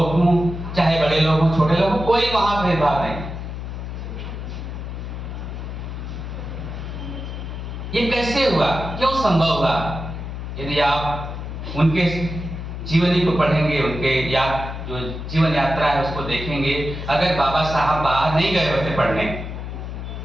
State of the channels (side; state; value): left; noise; hum, 7 dB below the sound